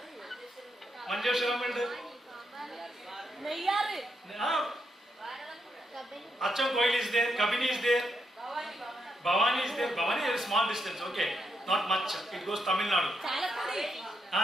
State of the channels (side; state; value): both; normal; correlation 0.80